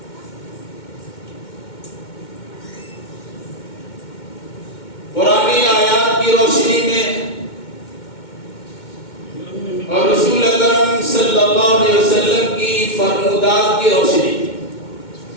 قرآنی آیات کی روشنی میں اور رسول اکرم صلی اللہ علیہ وسلم کی فرمودات کی روشنی میں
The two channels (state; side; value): late; right; 2.2 ms